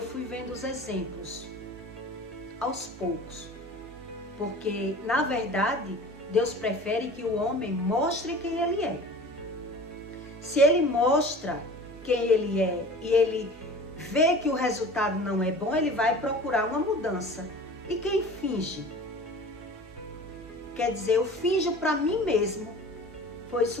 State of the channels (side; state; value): both; normal; correlation 0.40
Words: fui vendo os exemplos. Aos poucos. Porque, na verdade, Deus prefere que o homem mostre quem ele é. Se ele mostra quem ele é e ele vê que o resultado não é bom, ele vai procurar uma mudança. E quem finge? Quer dizer, eu finjo para mim mesmo. Foi